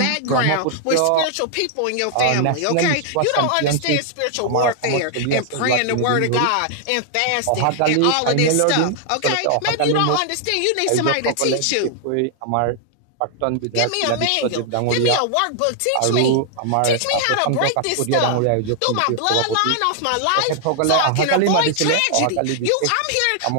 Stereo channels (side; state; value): both; different; correlation 0.00